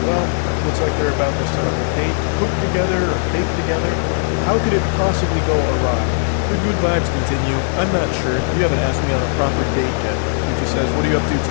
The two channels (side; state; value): right; silent; digital silence